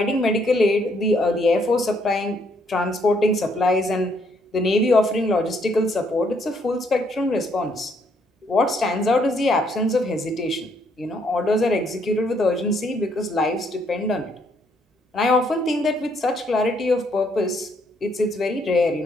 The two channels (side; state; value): both; normal; correlation 0.70